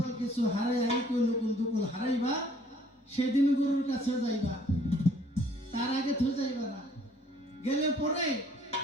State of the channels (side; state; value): both; normal; correlation 0.59